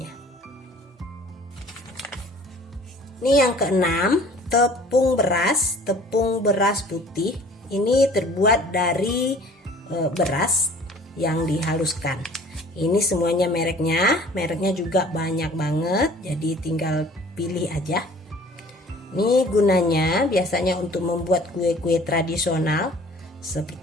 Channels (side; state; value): both; normal; correlation 0.50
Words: Ini yang keenam, tepung beras putih. Ini terbuat dari beras yang dihaluskan. Ini semuanya mereknya juga banyak banget, jadi tinggal pilih aja. Ini gunanya biasanya untuk membuat kue-kue tradisional